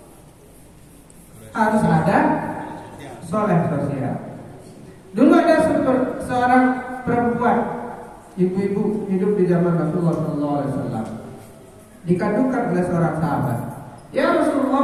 Harus ada soleh sosial. Dulu ada seorang perempuan, ibu-ibu hidup di zaman Rasulullah SAW, dikandungkan oleh seorang sahabat. Ya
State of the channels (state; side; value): identical; both; correlation 1.00